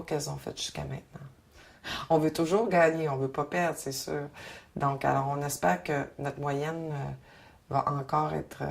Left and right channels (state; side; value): identical; both; correlation 1.00